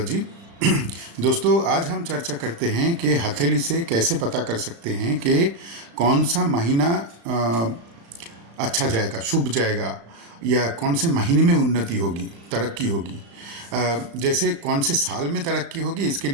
दोस्तों, आज हम चर्चा करते हैं कि हथेली से कैसे पता कर सकते हैं कि कौन सा महीना अच्छा जाएगा, शुभ जाएगा, या कौन से महीने में उन्नति होगी, तरक्की होगी। जैसे कौन से साल में तरक्की होगी, इसके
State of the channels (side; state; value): left; late; 35 ms